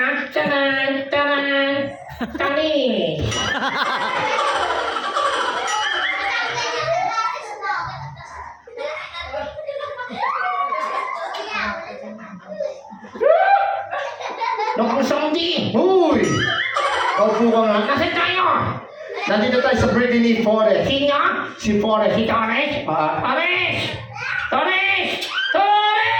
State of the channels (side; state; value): both; identical; correlation 1.00